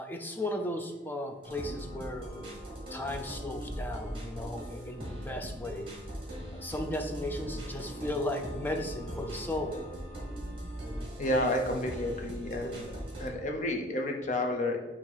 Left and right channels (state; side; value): normal; both; correlation 0.52